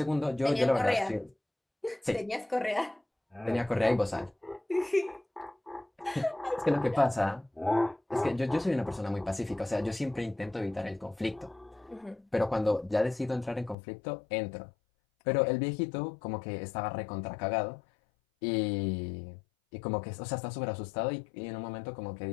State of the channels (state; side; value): drops out; right; at 13.8 s